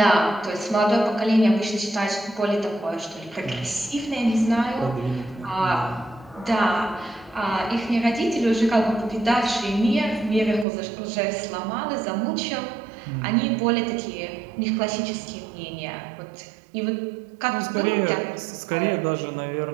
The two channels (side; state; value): left; drops out; at 10.7 s